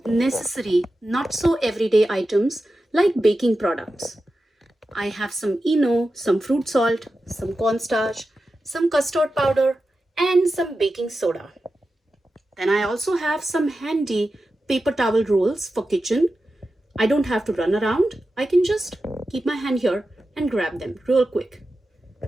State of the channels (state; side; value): normal; both; correlation 0.92